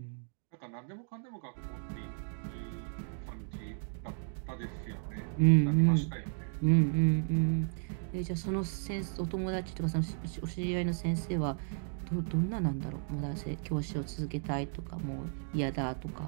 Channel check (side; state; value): left; silent; 55 dB below the other